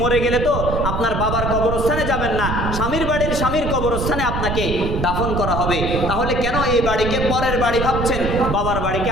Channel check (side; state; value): right; noise; rumble, 3 dB below the sound